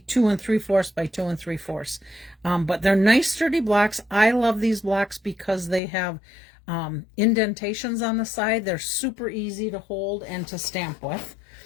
3/4 by 2 3/4. But they're nice sturdy blocks. I love these blocks because they have indentations on the side. They're super easy to hold and to stamp with,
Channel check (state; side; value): drops out; right; at 5.8 s